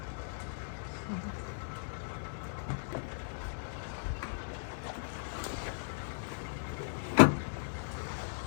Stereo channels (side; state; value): right; silent; digital silence